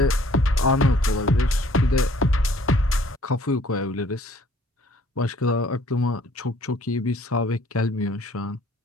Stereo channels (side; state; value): both; normal; correlation 0.58